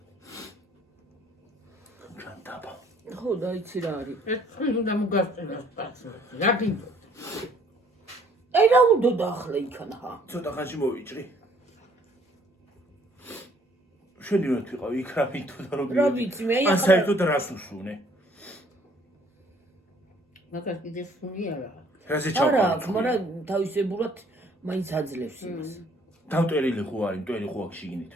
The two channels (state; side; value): normal; both; correlation 0.61